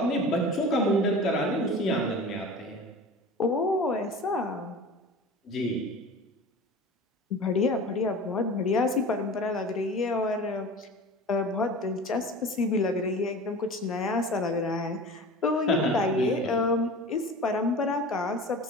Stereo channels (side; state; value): both; normal; correlation 0.37